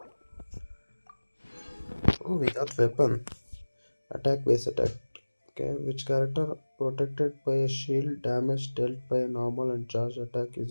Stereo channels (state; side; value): inverted; both; correlation -1.00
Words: Oh, we got weapon. Attack base attack. Okay, which character protected by a shield, damage dealt by a normal and charge attack is